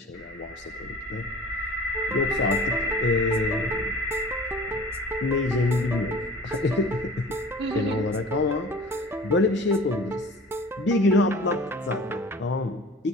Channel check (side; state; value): both; normal; correlation 0.43